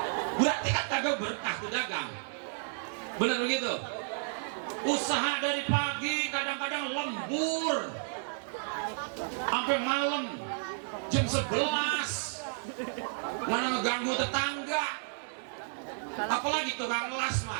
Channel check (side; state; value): left; silent; digital silence